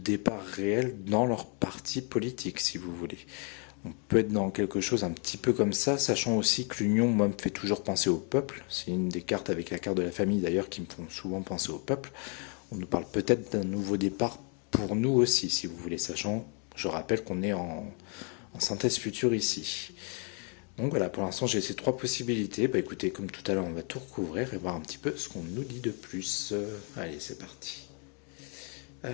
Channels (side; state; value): right; quieter; 38.5 dB